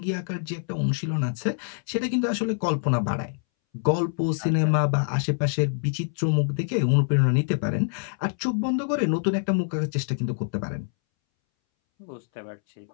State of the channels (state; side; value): silent; right; 61 dB below the other